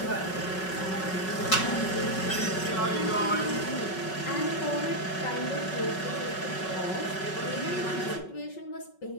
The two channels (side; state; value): right; late; 5.3 ms